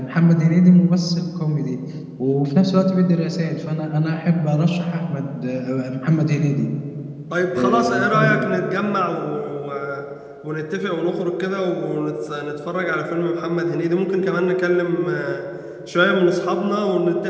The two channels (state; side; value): identical; both; correlation 1.00